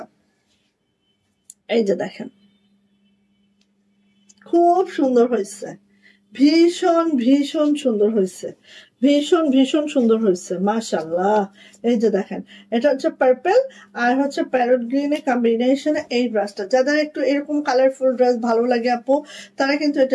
এই যে দেখেন খুব সুন্দর হয়েছে, ভীষণ ভীষণ সুন্দর হয়েছে, ভীষণ সুন্দর হয়েছে মাশাআল্লাহ। এই যে দেখেন, এটা হচ্ছে পার্পল আর হচ্ছে প্যারট গ্রিনের কম্বিনেশনে এই ড্রেসটা। যাদের একটু এরকম কালারফুল ড্রেস ভালো লাগে আপু, তারা কিন্তু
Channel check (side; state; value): both; identical; correlation 1.00